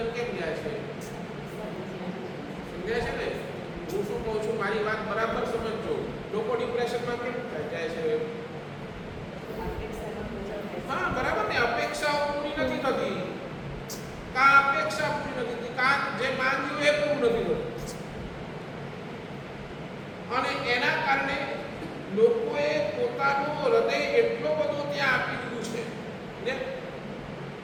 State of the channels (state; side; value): identical; both; correlation 1.00